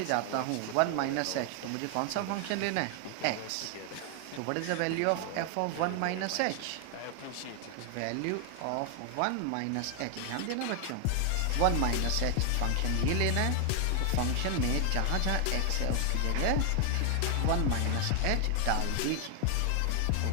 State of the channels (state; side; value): different; both; correlation 0.00